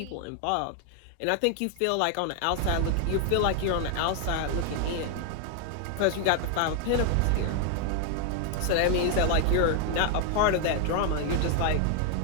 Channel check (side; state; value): both; different; correlation 0.00